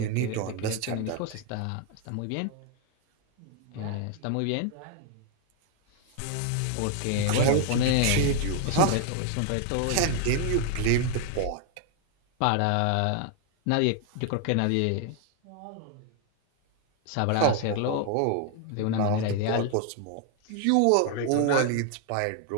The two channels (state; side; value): different; both; correlation 0.00